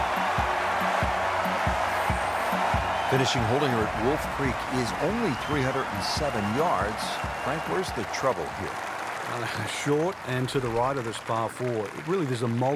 Finishing hole here at Wolf Creek is only 307 yards. Frank, where's the trouble here? Short and to the right of this par 4. Really, there's a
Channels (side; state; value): both; identical; correlation 1.00